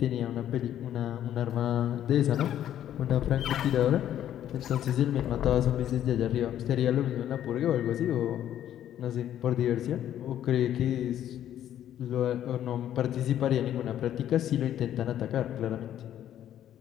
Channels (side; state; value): right; quieter; 11.1 dB